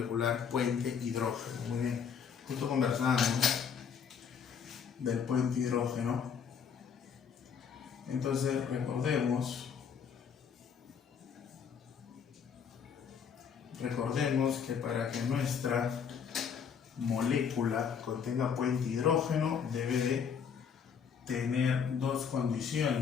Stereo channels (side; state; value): right; quieter; 7.0 dB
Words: puente hidrógeno? Muy bien, justo conversamos del puente hidrógeno. Entonces recordemos que para que nuestra molécula contenga puente hidrógeno debe de tener dos